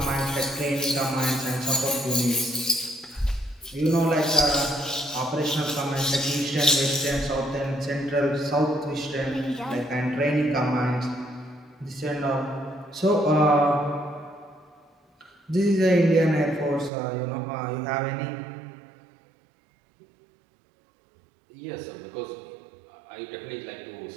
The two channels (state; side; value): drops out; left; at 16.9 s